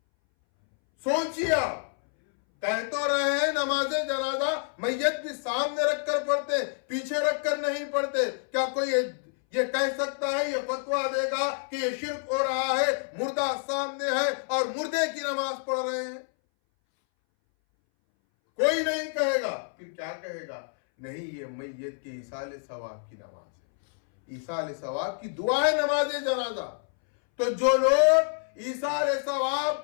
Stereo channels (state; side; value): silent; right; 59 dB below the other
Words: سوچیے آپ، کہہ تو رہے ہیں نماز جنازہ میت بھی سامنے رکھ کر پڑھتے، پیچھے رکھ کر نہیں پڑھتے. کیا کوئی یہ کہہ سکتا ہے، یہ فتویٰ دے گا کہ یہ شرک ہو رہا ہے، مردہ سامنے ہے اور مردے کی نماز پڑھ رہے ہیں؟ کوئی نہیں کہے گا. پھر کیا کہے گا؟ نہیں، یہ میت کے ایصال ثواب کی نماز ہے، ایصال ثواب کی دعا ہے نماز جنازہ. تو جو لوگ ایثار